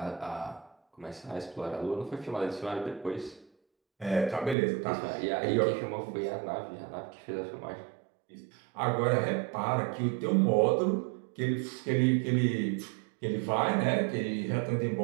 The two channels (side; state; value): left; drops out; at 4.5 s